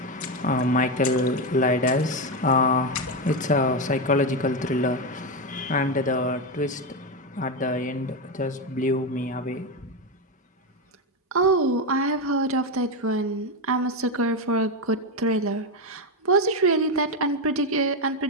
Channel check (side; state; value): both; normal; correlation 0.10